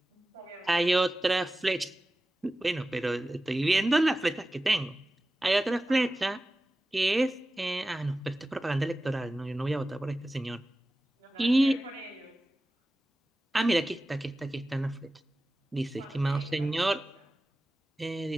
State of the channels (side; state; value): both; normal; correlation 0.96